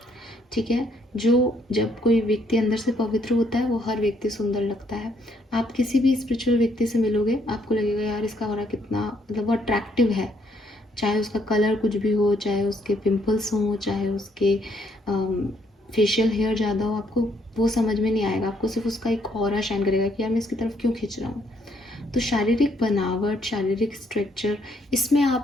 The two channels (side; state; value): both; normal; correlation 0.70